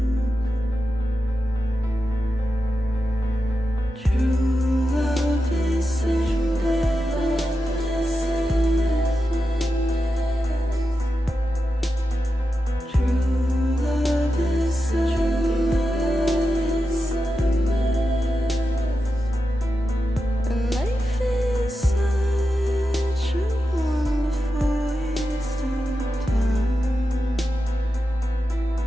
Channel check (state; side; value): normal; both; correlation 0.90